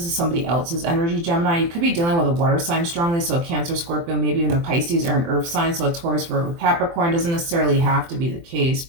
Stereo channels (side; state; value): left; late; 24 ms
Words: is somebody else's energy, Gemini. You could be dealing with a water sign strongly, so a Cancer, Scorpio, maybe even a Pisces or an Earth sign, so a Taurus, Virgo, Capricorn. Doesn't necessarily have to be the case,